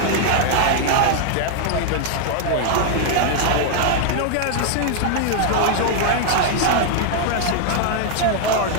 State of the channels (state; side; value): different; both; correlation 0.00